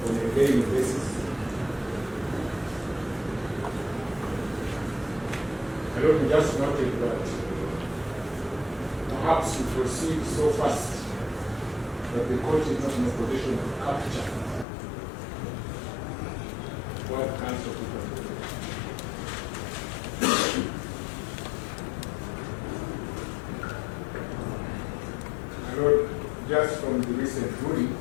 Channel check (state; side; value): drops out; right; at 14.7 s